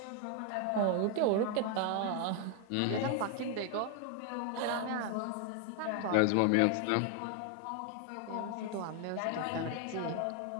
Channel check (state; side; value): different; both; correlation 0.00